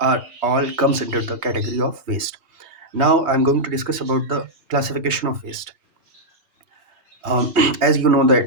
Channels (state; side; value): late; left; 3.2 ms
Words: are all comes under the category of waste. Now I'm going to discuss about the classification of waste. As you know